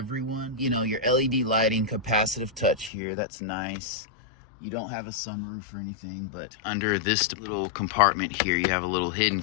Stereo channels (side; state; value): right; drops out; at 2.9 s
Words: You know, your LED lighting, capacitive touch here. That's nice. You don't have a sunroof or anything, but under this little compartment here, you have a little hidden